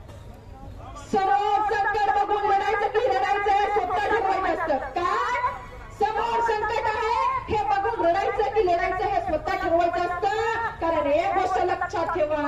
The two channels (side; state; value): both; identical; correlation 1.00